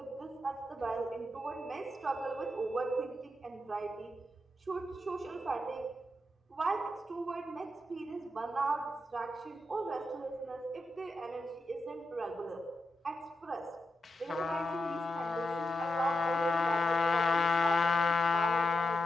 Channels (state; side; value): normal; both; correlation 0.86